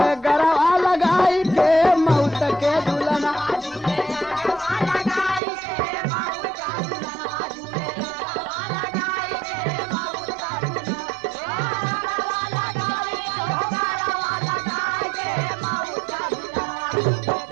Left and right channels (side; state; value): left; drops out; at 5.4 s